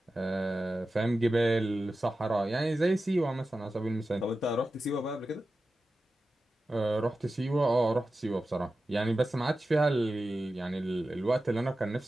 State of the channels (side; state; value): both; normal; correlation 0.93